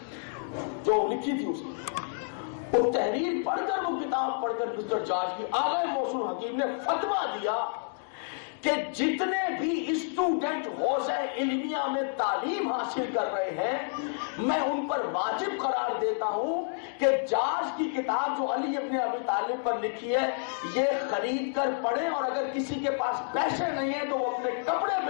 جو لکھی تھی اس کی، وہ تحریر پڑھ کر وہ کتاب پڑھ کر مسٹر جارج کی، آگئے محسن حکیم نے فتویٰ دیا کہ جتنے بھی اسٹوڈنٹ حوزہ علمیہ میں تعلیم حاصل کر رہے ہیں میں ان پر واجب قرار دیتا ہوں کہ جارج کی کتاب جو علی ابن ابی طالب پر لکھی ہے یہ خرید کر پڑھیں، اور اگر کسی کے پاس پیسے نہیں ہیں تو وہ اپنے کپڑے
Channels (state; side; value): silent; right; digital silence